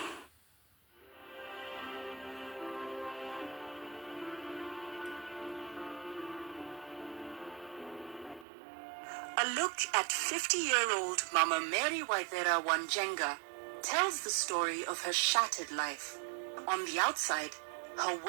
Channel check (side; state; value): left; drops out; at 8.5 s